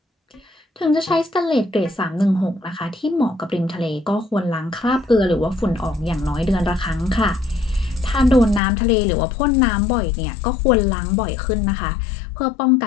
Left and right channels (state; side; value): drops out; right; at 8.6 s